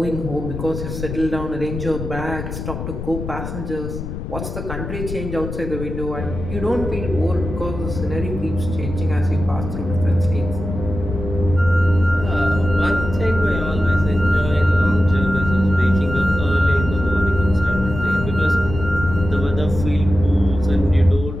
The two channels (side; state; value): left; noise; rumble, 7 dB below the sound